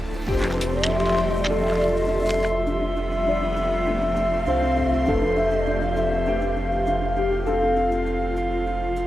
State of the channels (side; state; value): both; normal; correlation 0.91